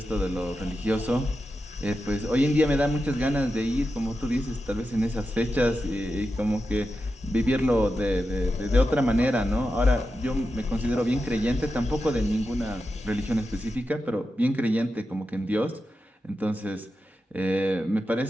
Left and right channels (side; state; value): both; normal; correlation 0.90